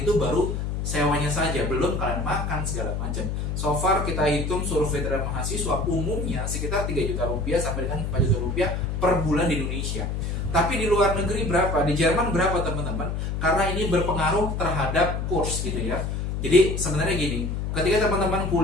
baru sewanya saja, belum kalian makan segala macam. So far kita hitung survei terhadap mahasiswa umumnya sekitar 3 juta rupiah sampai dengan 4 juta rupiah per bulan di Indonesia. Tapi di luar negeri berapa? Di Jerman berapa teman-teman? Karena ini berpengaruh terhadap kurs gitu ya. Jadi sebenarnya gini, ketika teman-teman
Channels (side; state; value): left; noise; hum, 2 dB below the sound